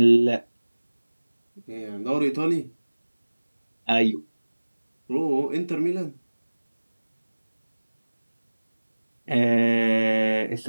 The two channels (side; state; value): both; inverted; correlation -1.00